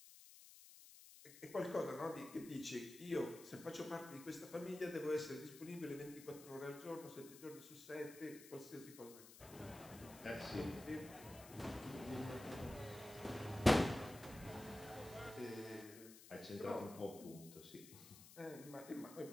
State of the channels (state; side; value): noise; left; hiss, 16 dB below the sound